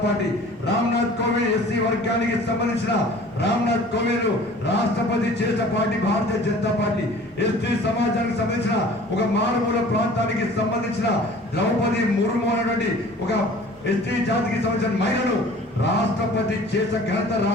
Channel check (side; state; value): both; normal; correlation 0.47